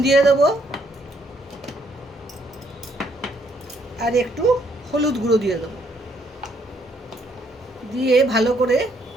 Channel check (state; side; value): normal; both; correlation 0.70